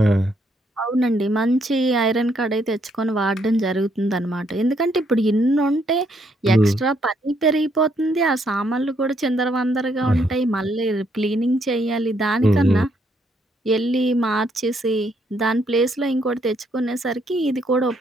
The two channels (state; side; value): normal; both; correlation 0.72